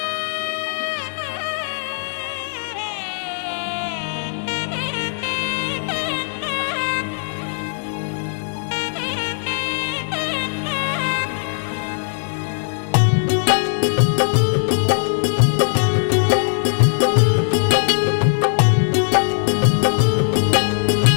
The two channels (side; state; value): right; silent; digital silence